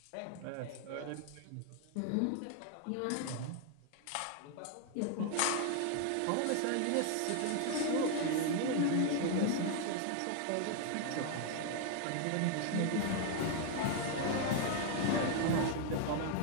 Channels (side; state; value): both; different; correlation 0.00